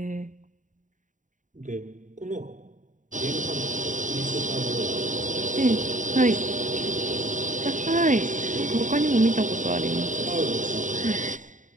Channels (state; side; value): late; left; 0.37 ms